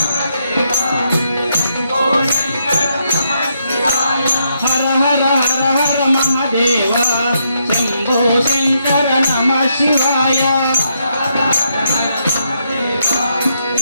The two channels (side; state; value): both; inverted; correlation -0.78